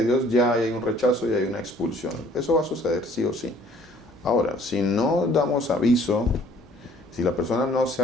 Dios, ya hay un rechazo y hay una expulsión. Eso va a suceder, sí o sí. Ahora, si no damos aviso, si la persona no se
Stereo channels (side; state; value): both; normal; correlation 0.57